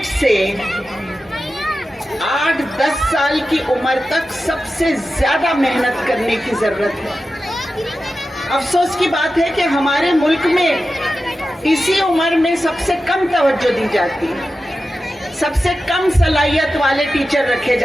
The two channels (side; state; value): both; normal; correlation 0.92